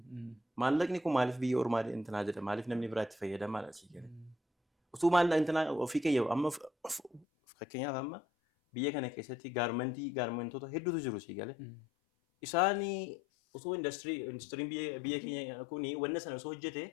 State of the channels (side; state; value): right; drops out; at 7.2 s